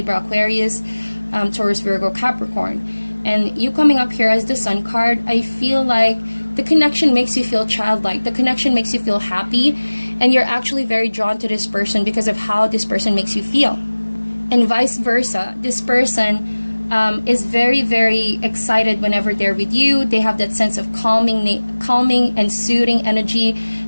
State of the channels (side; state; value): both; inverted; correlation -1.00